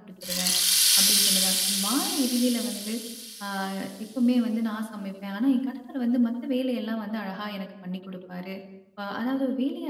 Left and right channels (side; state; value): both; identical; correlation 1.00